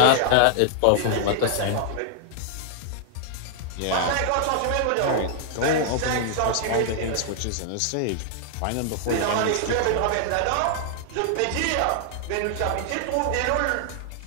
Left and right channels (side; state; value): both; different; correlation -0.01